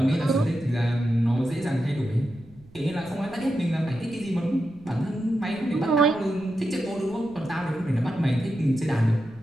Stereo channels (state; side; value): noise; right; rumble, 24 dB below the sound